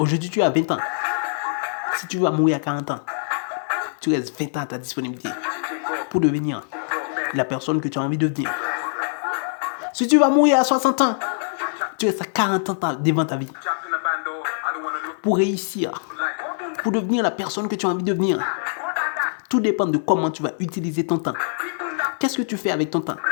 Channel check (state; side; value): silent; right; 62 dB below the other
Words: tu as 20 ans. Si tu vas mourir à 40 ans, tu restes 20 ans à ta disponibilité pour devenir la personne que tu as envie de devenir. Si tu vas mourir à 60 ans, tu restes à 40 ans devant ta vie pour réussir, pour devenir la personne que tu as envie de devenir. Tout dépend de comment tu vas utiliser ton temps. Qu'est-ce que tu fais avec ton temps?